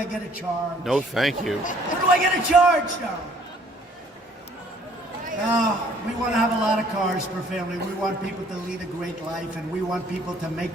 get a charge? No, thank you. Where do I get a charge, darling? No, we want to have a lot of cars per family. We want people to lead a great life, and we want people to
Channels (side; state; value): both; normal; correlation 0.59